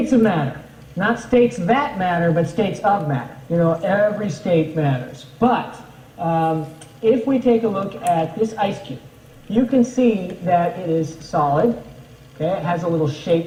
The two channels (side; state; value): both; identical; correlation 1.00